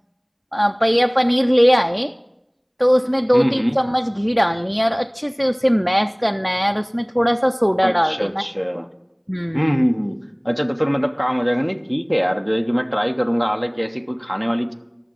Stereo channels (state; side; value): identical; both; correlation 1.00